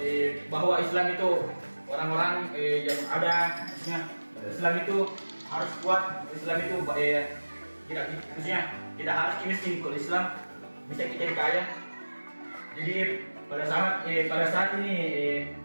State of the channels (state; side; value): inverted; both; correlation -1.00